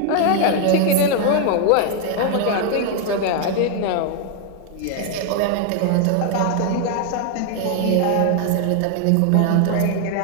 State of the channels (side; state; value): both; different; correlation 0.00